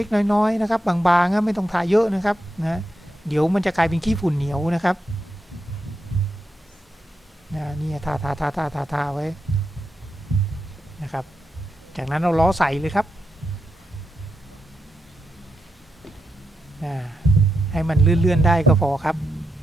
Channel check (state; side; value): normal; both; correlation 0.85